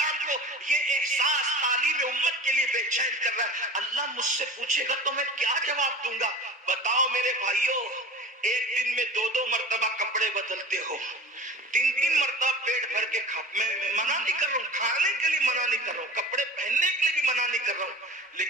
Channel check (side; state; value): both; normal; correlation 0.36